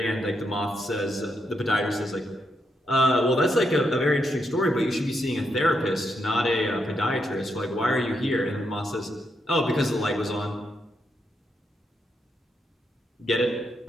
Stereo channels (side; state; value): both; normal; correlation 0.81